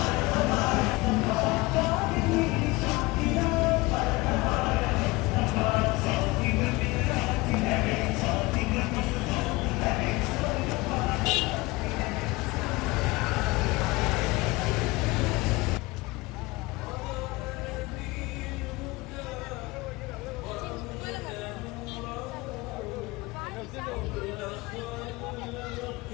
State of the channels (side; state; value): right; quieter; 22.3 dB